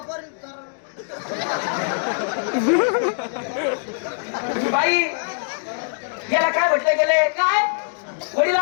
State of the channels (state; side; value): silent; right; digital silence